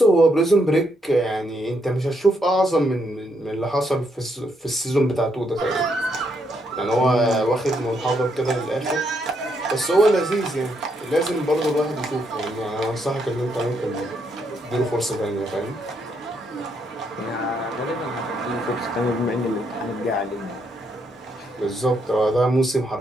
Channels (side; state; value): both; normal; correlation 0.76